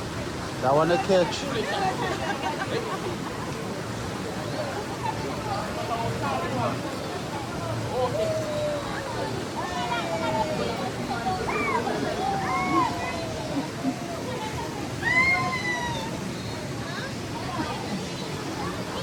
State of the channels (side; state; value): both; identical; correlation 1.00